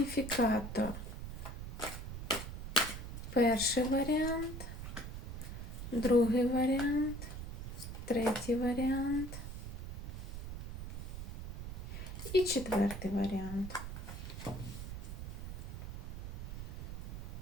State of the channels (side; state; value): right; noise; rumble, 7 dB below the sound